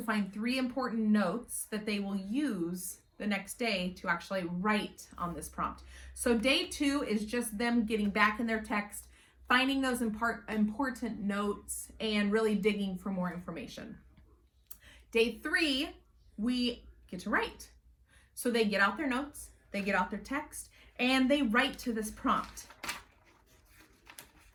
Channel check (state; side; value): identical; both; correlation 1.00